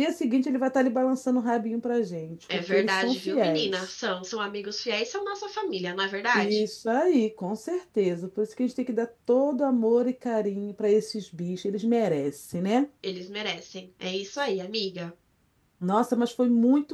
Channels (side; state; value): both; identical; correlation 1.00